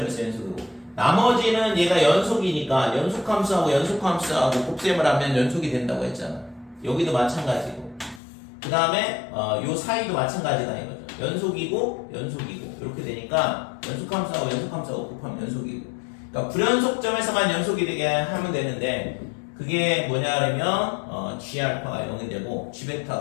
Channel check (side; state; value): right; drops out; at 8.2 s